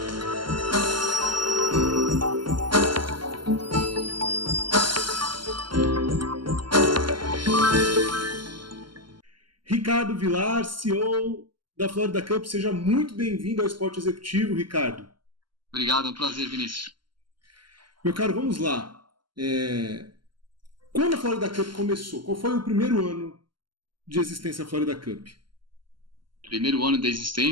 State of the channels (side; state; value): left; late; 0.72 ms